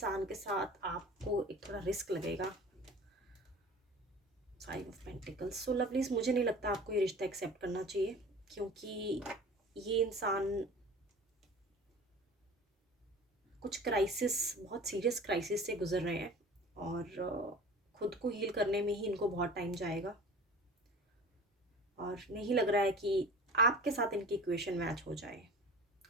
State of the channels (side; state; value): both; normal; correlation 0.40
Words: के साथ आपको एक थोड़ा रिस्क लगेगा। 5 ऑफ पेंटिकल्स। सो लवलीज, मुझे नहीं लगता आपको ये रिश्ता एक्सेप्ट करना चाहिए, क्योंकि ये इंसान कुछ क्राइसिस, बहुत सीरियस क्राइसिस से गुजर रहे हैं, और खुद को हील करने में ही इनको बहुत टाइम जाएगा, और नहीं लग रहा है कि आपके साथ इनकी इक्वेशन मैच हो जाए।